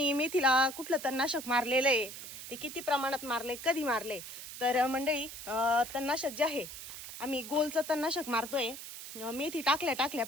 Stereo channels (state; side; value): noise; right; hiss, 11 dB below the sound